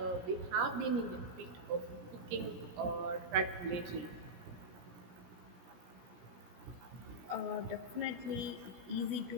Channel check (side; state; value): left; late; 17 ms